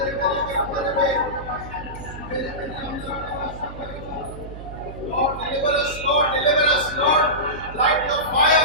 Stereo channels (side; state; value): right; noise; hum, 12 dB below the sound